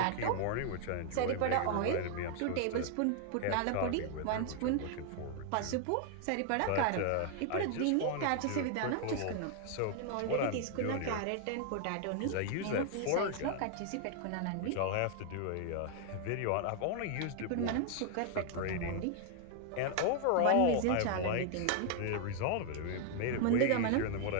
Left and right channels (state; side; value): different; both; correlation 0.00